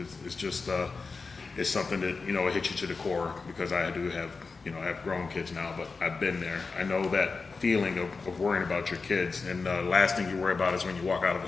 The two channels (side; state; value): right; quieter; 4.4 dB